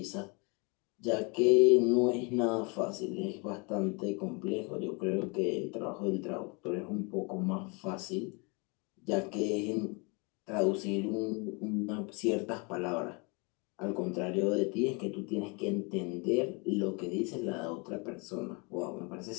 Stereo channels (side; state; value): right; quieter; 31.1 dB